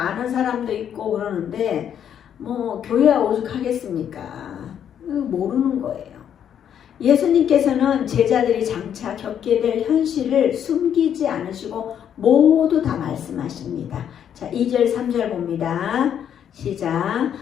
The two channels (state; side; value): quieter; right; 9.1 dB